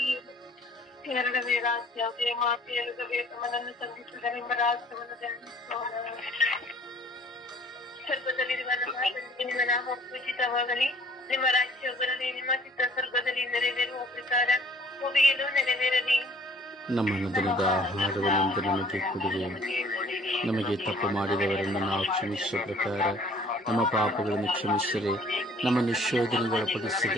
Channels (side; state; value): both; normal; correlation 0.55